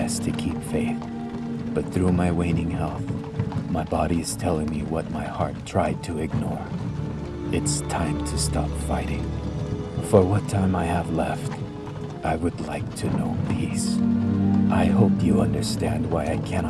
to keep faith, but through my waning health, my body is telling me what my heart tried to ignore. It's time to stop fighting. For what time I have left, I would like to know peace. I hope you understand why I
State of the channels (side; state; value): both; identical; correlation 1.00